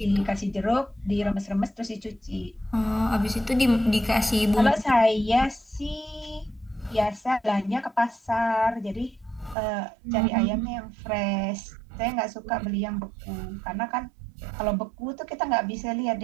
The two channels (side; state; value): left; drops out; at 9.6 s